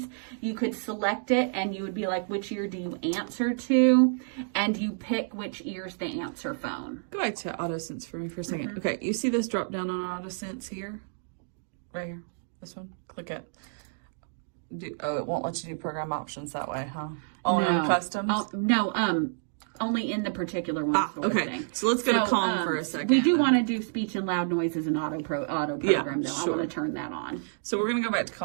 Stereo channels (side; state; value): left; silent; digital silence